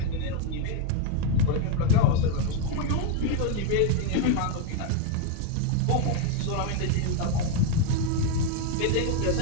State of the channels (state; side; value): different; both; correlation 0.01